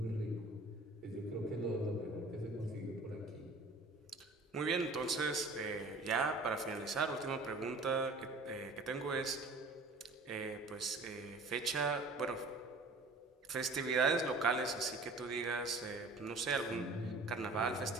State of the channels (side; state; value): left; quieter; 3.1 dB